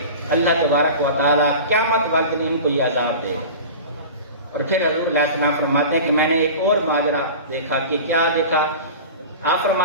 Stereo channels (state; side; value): inverted; both; correlation -0.34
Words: اللہ تبارک و تعالیٰ قیامت والے دن ان کو یہ عذاب دے۔ اور پھر حضور علیہ السلام فرماتے ہیں کہ میں نے ایک اور ماجرا دیکھا۔ کہ کیا دیکھا؟ آپ